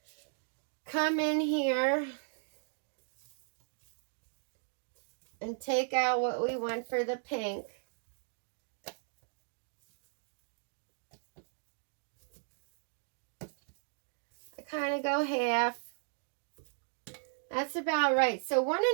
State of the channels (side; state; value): left; silent; digital silence